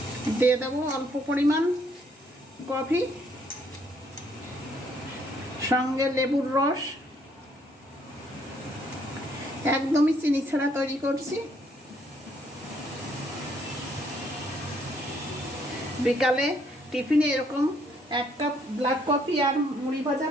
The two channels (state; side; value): normal; both; correlation 0.68